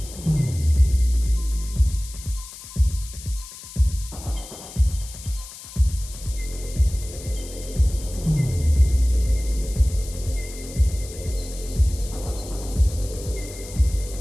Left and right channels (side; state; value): left; noise; hiss, 15 dB below the sound